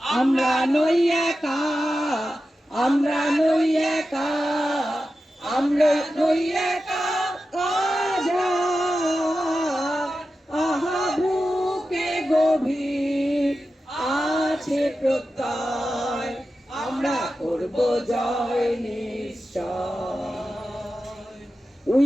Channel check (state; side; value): normal; both; correlation 0.92